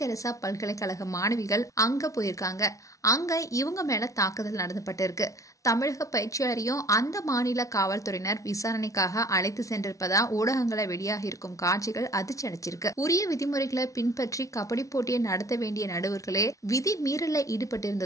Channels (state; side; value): late; right; 0.16 ms